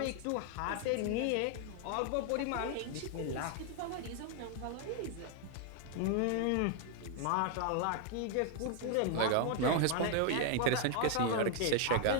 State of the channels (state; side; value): different; both; correlation 0.00